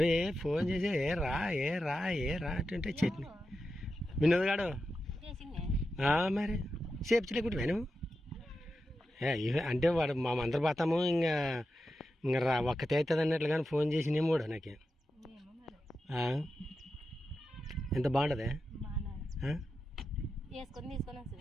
ఫోన్ చేసి ఏ రా అంటే చట్నీ వినోద్ గాడు మరి చేపించలేకుంటే నువ్వు అంటే వాడు మా అందరు పోతాము ఇంకా రా ఒక్కతే అవుతుంది అన్నట్లు కానీ ఫోన్ చేసినేమో కూడా నాకే. ఎంత బాగుంటుంది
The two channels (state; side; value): normal; both; correlation 0.90